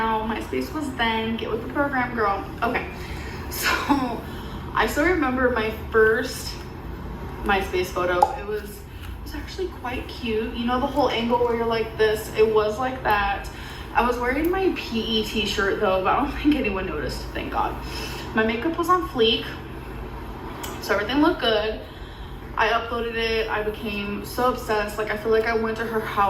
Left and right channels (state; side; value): identical; both; correlation 1.00